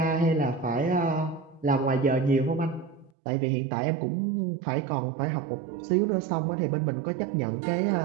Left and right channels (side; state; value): left; drops out; at 3.1 s